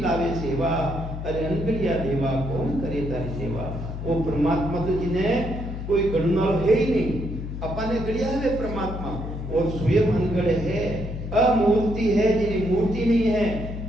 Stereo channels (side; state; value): left; noise; hum, 7 dB below the sound